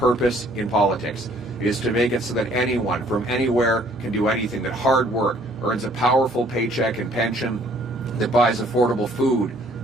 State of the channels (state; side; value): normal; both; correlation 0.60